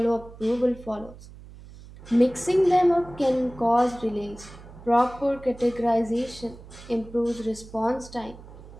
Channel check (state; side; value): noise; right; hum, 18 dB below the sound